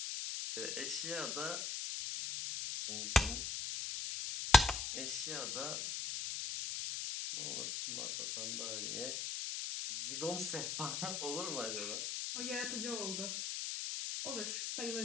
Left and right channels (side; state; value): left; noise; hiss, 2 dB below the sound